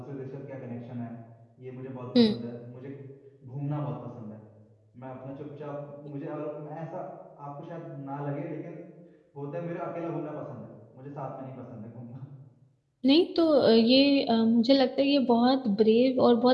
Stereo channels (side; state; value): both; identical; correlation 1.00